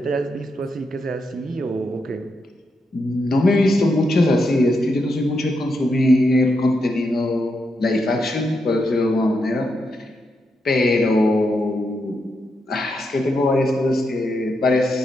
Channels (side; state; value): both; normal; correlation 0.83